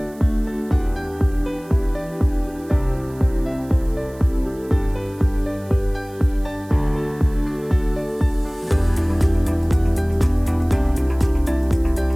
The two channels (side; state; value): right; noise; hiss, 26 dB below the sound